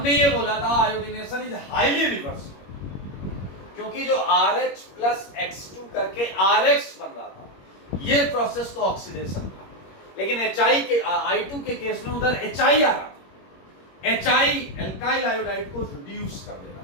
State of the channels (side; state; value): right; late; 21 ms